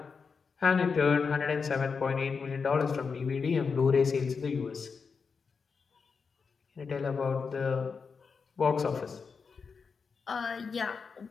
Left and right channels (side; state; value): right; quieter; 5.4 dB